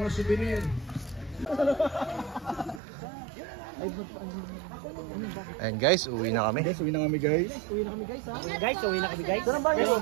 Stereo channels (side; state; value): left; drops out; at 2.8 s